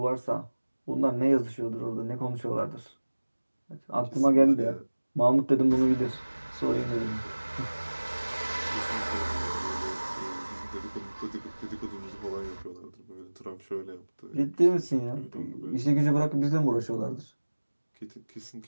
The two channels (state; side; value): inverted; both; correlation -1.00